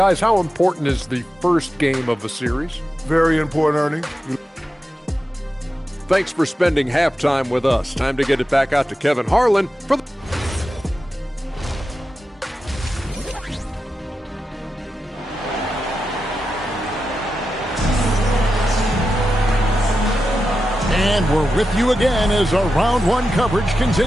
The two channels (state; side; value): normal; both; correlation 0.90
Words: how important is the first game of the series? Very important, Ernie. Thanks for spending halftime with us. Time to get it back out to Kevin Harlan for the... And we're with you again as our round one coverage